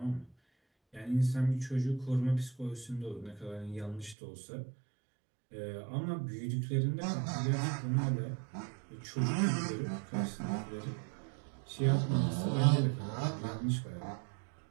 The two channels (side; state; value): left; drops out; at 4.2 s